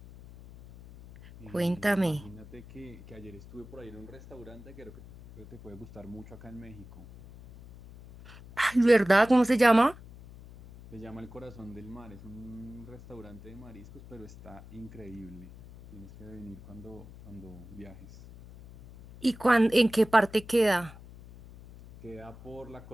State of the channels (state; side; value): noise; left; hum, 18 dB below the sound